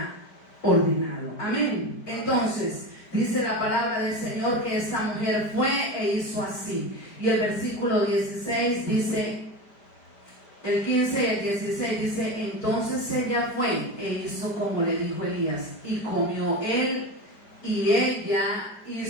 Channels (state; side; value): late; right; 4.8 ms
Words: ordenado. Amén. Entonces, dice la palabra del Señor que esta mujer fue e hizo así. Y el versículo 16 dice, el 15 y el 16 dice, entonces ella fue e hizo como le dijo Elías, y comió él y ella y